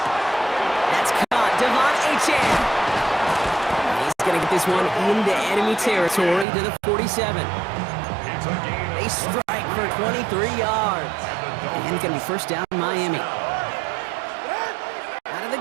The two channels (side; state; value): left; drops out; at 6.5 s